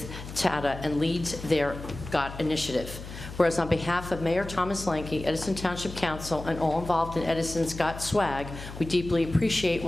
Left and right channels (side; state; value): left; noise; hum, 11 dB below the sound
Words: Tata and leads their GOT initiative. Whereas on behalf of Mayor Thomas Lanke, Edison Township Council, and all involved in Edison's GOT swag, we deeply appreciate